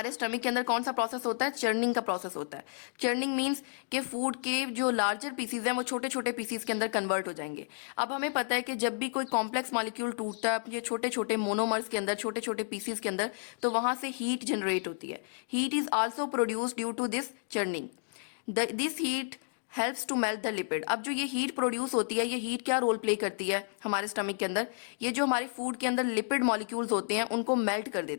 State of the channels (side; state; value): right; silent; digital silence